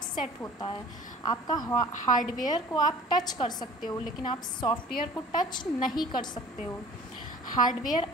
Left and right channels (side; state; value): both; normal; correlation 0.46